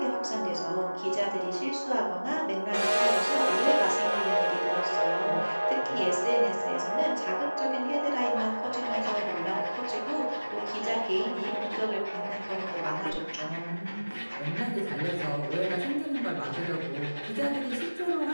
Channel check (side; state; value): both; inverted; correlation -1.00